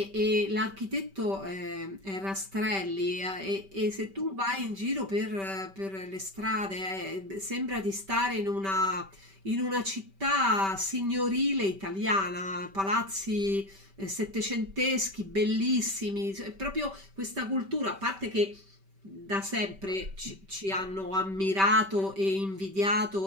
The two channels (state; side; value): late; left; 5.2 ms